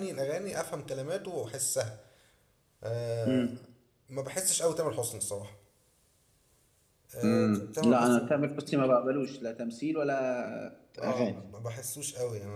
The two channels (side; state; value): both; identical; correlation 1.00